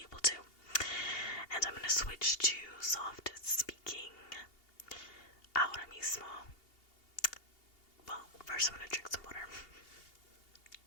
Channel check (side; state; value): right; late; 2.8 ms